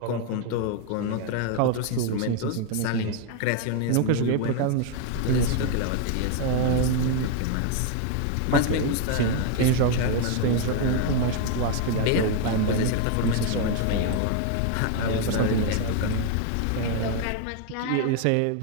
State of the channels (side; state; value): both; different; correlation 0.00